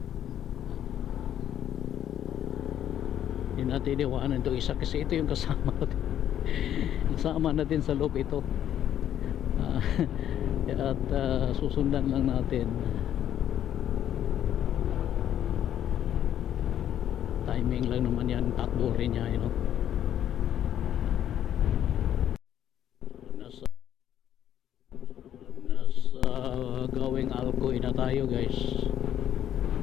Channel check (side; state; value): right; quieter; 10.7 dB